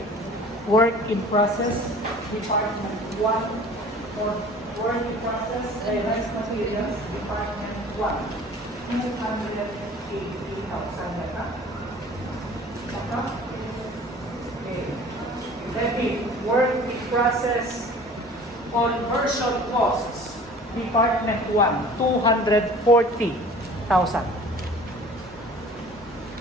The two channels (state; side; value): normal; both; correlation 0.46